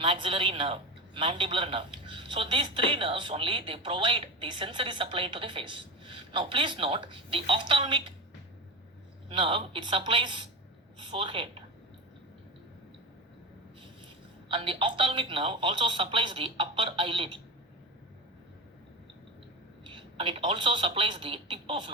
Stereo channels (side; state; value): both; normal; correlation 0.24